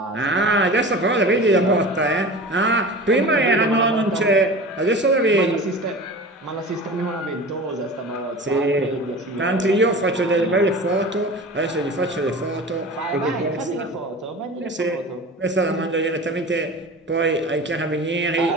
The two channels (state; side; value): normal; both; correlation 0.35